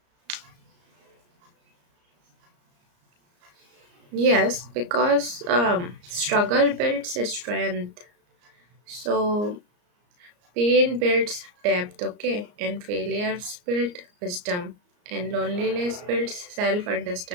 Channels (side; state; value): left; late; 34 ms